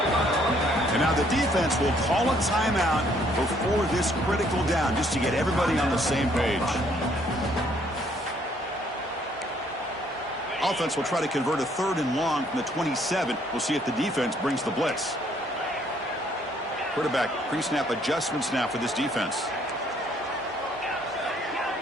And now the defense will call a timeout before this critical down, just to get everybody on the same page. Offense will try to convert a 3rd and long from the 27. We'll see if the defense brings the blitz. Quarterback pre-snap adjustments now for this defense.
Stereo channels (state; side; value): normal; both; correlation 0.65